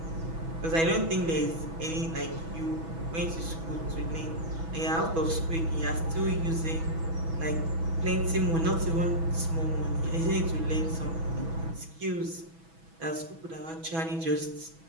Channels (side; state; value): left; late; 6.1 ms